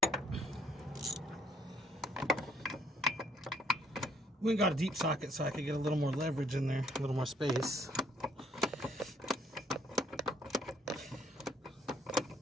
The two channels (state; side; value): normal; both; correlation 0.66